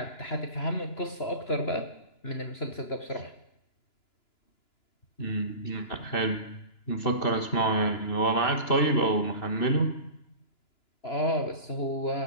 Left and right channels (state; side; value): late; right; 2.9 ms